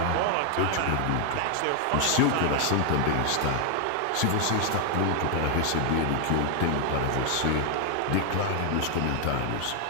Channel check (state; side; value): different; both; correlation 0.00